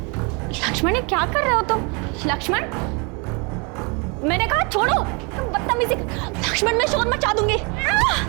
ये क्या कर रहे हो तुम? लक्ष्मण, मैंने कहा छोड़ो, तुम बदतमीजी। लक्ष्मण मैं शोर मचा दूंगी।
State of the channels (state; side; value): quieter; left; 31.5 dB